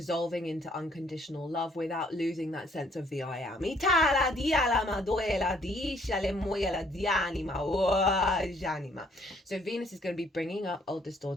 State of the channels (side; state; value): both; normal; correlation 0.64